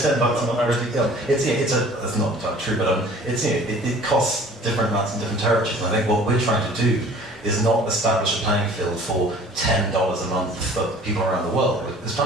not a big deal. It's not entirely true, but it costs different amounts in different territories. And I think what we're trying to do is not establish a playing field for $10 a month for people around the world. It's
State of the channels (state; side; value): normal; both; correlation 0.49